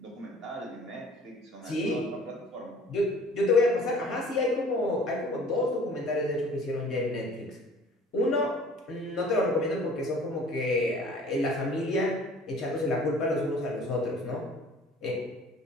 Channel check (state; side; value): normal; both; correlation 0.50